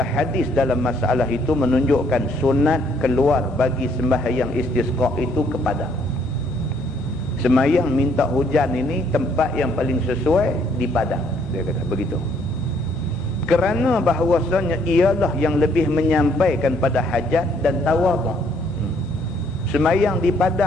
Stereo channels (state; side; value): normal; both; correlation 0.66